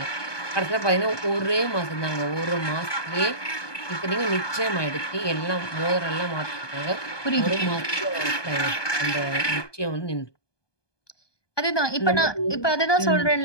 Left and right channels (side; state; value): right; late; 1.2 ms